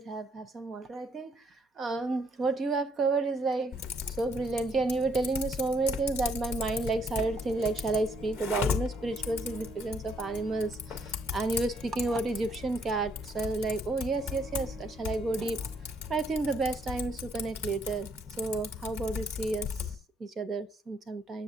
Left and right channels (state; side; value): normal; both; correlation 0.69